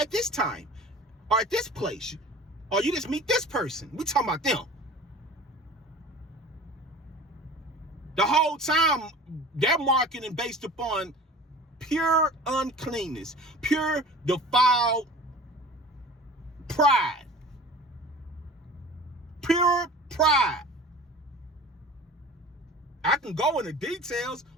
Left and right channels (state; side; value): normal; both; correlation 0.41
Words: this time, or at this place, or you just meet this person. We talking about them. The whole time they're marketing based upon pure uncleanness, pure defiled pride. Pure pride. I can go into details,